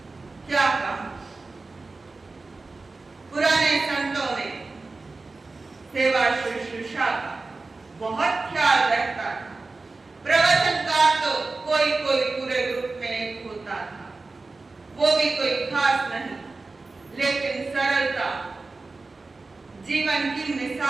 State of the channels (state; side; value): quieter; left; 3.6 dB